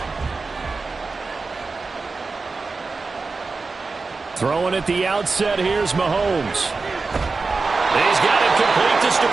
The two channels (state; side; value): quieter; left; 4.1 dB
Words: Throwing at the outset, here's Mahomes. He's got it complete to